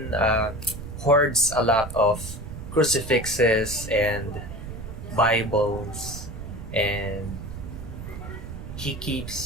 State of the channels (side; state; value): right; noise; rumble, 10 dB below the sound